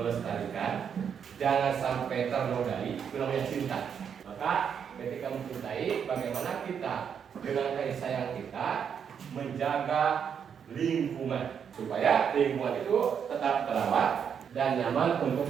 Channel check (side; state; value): left; quieter; 7.5 dB